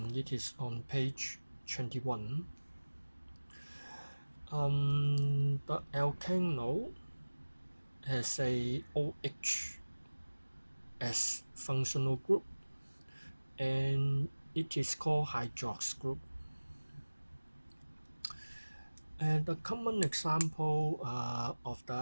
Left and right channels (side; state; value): both; inverted; correlation -1.00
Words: It is on page 21. The alkane has a OH as functional group, and it is called hydrox group. And the common example of